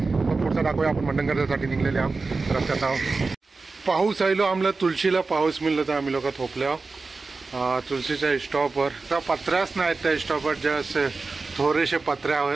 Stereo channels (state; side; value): quieter; left; 4.0 dB